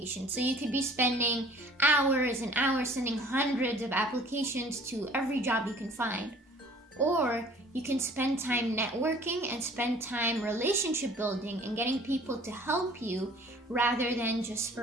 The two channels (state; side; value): normal; both; correlation 0.51